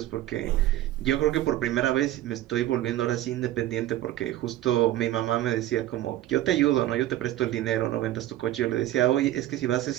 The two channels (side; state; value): left; quieter; 14.1 dB